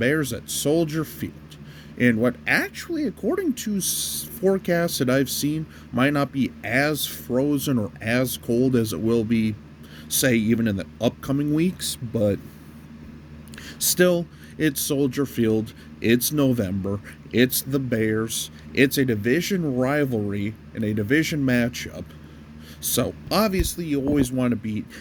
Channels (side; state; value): both; identical; correlation 1.00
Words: at Soldier Field in what actually, according to forecasts that I've seen, might not be as frozen or as cold as it will be, say, even in the upcoming weeks, but still, it's Soldier Field, it's November, it's the Bears, it's a division rivalry and a division matchup, so obviously you always want to beat